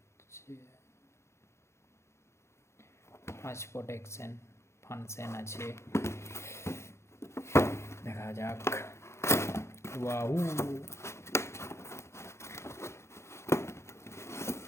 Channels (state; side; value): late; right; 0.13 ms